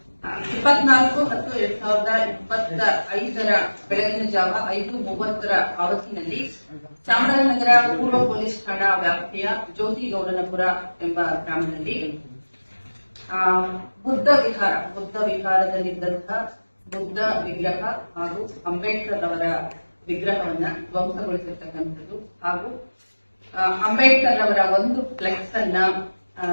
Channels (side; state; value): both; inverted; correlation -1.00